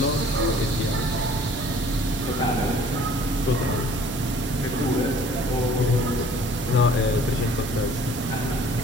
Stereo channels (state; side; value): normal; both; correlation 0.53